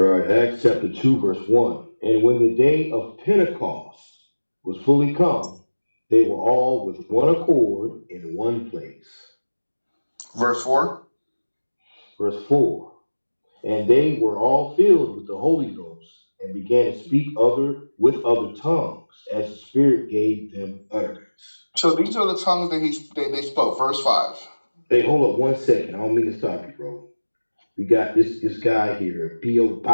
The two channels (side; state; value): both; inverted; correlation -1.00